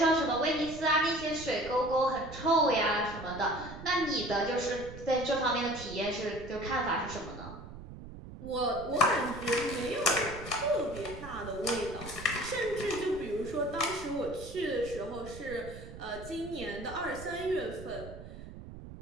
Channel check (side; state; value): right; noise; rumble, 13 dB below the sound